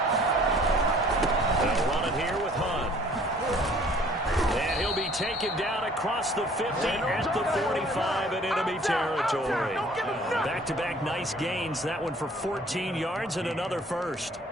Taken down across the 50 at the 45 in enemy territory. Back-to-back nice gains. That one for 14 yards and another first.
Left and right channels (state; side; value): normal; both; correlation 0.55